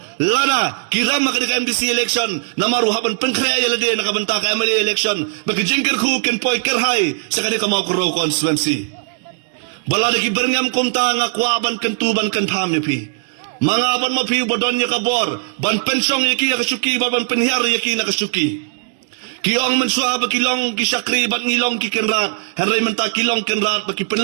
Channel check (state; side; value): silent; left; digital silence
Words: Lana kiram ka di NBC election. Namaru haban penkrea ya lagi nakabenta ka MLA election. Baki jing kerku kin poy kerhai sa kanira mo koro constituency. Balada ki berngam kumta nga kwaban kentuban kentam pi. Mga ban mapiu badon niya kabor, ban pensong yaki nakasuki, ban penhiar yaki nakasuki. Kiong mensua ba kilong kisakri, ban ngilong kikenrat, haray menta kilong kenrat, baki